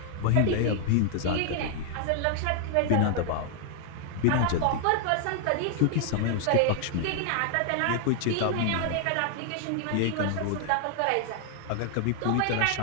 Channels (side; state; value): both; different; correlation 0.00